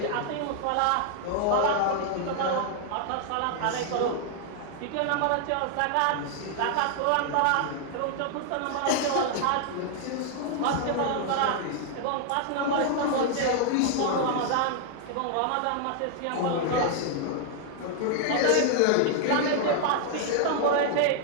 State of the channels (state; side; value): different; both; correlation 0.00